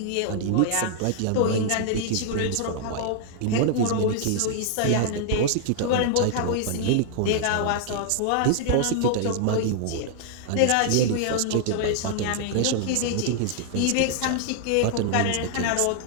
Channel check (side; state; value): both; different; correlation 0.00